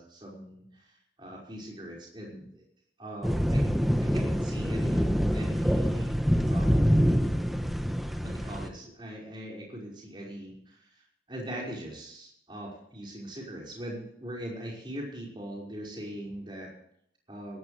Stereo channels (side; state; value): both; normal; correlation 0.96